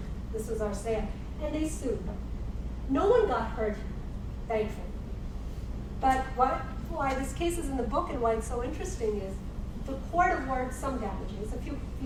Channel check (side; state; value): both; identical; correlation 1.00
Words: this was our sale. And they sued. No one got hurt, thankfully. But why this case is in the book and why it's so interesting is the court awards some damages, a few